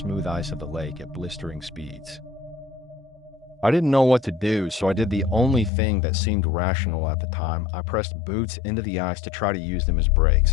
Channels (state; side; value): drops out; right; at 5.7 s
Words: ice of the lake at blistering speeds. I didn't know what to do, so I did the only thing that seemed rational at the time. I pressed boots into the ice to try to use them as